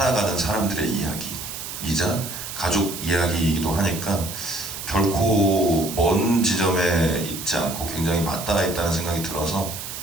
사람들의 이야기이자 가족 이야기이기도 하니까 결코 먼 지점에 있지 않고 굉장히 맞닿아 있다는 생각이 들어서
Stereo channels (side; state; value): right; noise; hiss, 8 dB below the sound